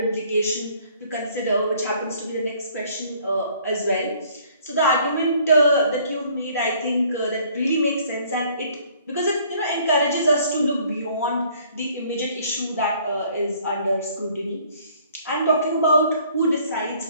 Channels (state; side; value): inverted; both; correlation -0.59